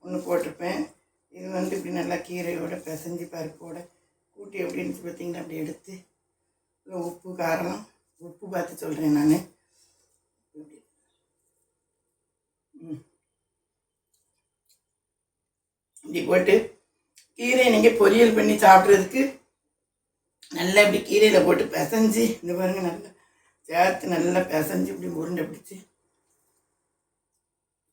ஒன்று போட்டிருப்பேன். இது வந்து இப்படி நல்லா கீரையோட பிசைஞ்சு பருப்போட கூட்டி எப்படின்னு பார்த்தீங்கன்னா அப்படி எடுத்து உப்பு காரம் உப்பு பார்த்து சொல்கிறேன் நான். இப்படி போட்டு கீரையை நீங்கள் பொரியல் பண்ணி சாப்பிட்றதுக்கு நல்லா இப்படி கீரையில் போட்டு பிசைஞ்சு இந்த பாருங்கள் நல்லா சேர்த்து நல்லா பிசைஞ்சு இப்படி உருண்டை பிடிச்சி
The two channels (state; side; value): identical; both; correlation 1.00